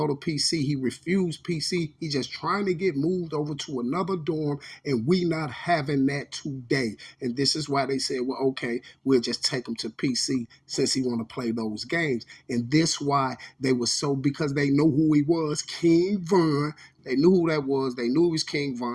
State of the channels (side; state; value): both; identical; correlation 1.00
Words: to PC. He refused PC. He just trying to get moved over to another dorm, and we not having that today. And this is why they said, well, okay, we'll just take him to PC since he want to play those games. And this why they were so, because they know who he was, King Von. They knew who that was. They knew he was King